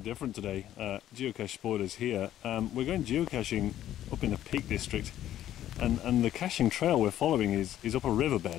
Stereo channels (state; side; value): quieter; right; 12.2 dB